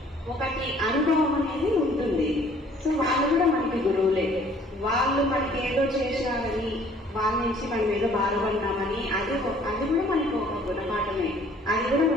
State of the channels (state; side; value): normal; both; correlation 0.57